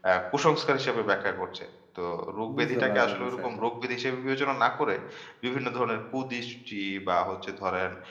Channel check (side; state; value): both; identical; correlation 1.00